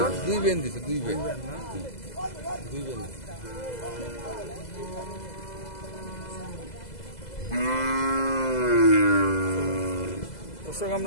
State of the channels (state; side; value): late; right; 2.0 ms